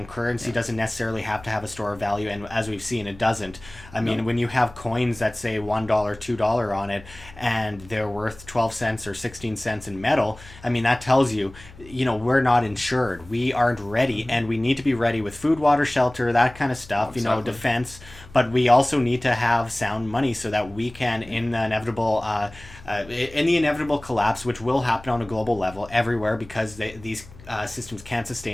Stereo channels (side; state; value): left; noise; hum, 20 dB below the sound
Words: currency doesn't necessarily have to have a store of value, and as we've seen, it doesn't. I mean, when you have coins that say $1, $2 on it, and they're worth 12 cents or 16 cents in metal, I mean, that tells you, we're not insured. We aren't ready, and we need to be ready with food, water, shelter, that kind of stuff, defense. But we also need to have sound money so that we can, in the inevitable collapse, which will happen on a global level everywhere, because these systems can't